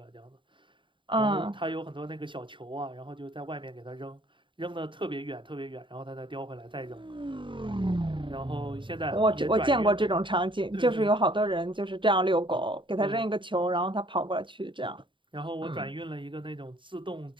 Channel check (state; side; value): late; left; 0.24 ms